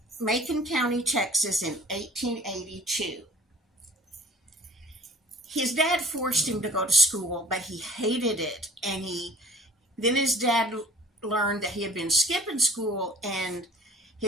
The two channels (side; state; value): both; normal; correlation 0.49